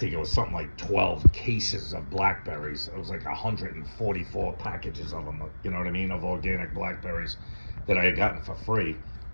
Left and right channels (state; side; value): inverted; both; correlation -1.00